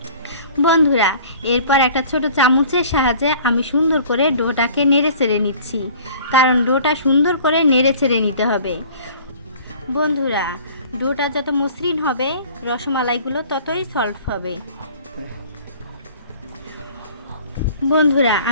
বন্ধুরা, এরপর একটা ছোট চামচের সাহায্যে আমি সুন্দর করে ডোটাকে নেড়ে চেড়ে নিচ্ছি, কারণ ডোটা সুন্দর করে নেড়ে চেড়ে নিতে হবে। বন্ধুরা, ডোটা যত মসৃণ হবে রসমালাইগুলো ততই সফট হবে। বন্ধুরা,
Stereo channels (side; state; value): both; inverted; correlation -0.48